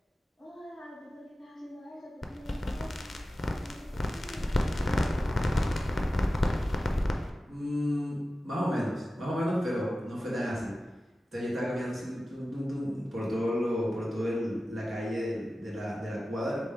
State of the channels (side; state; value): both; normal; correlation 0.94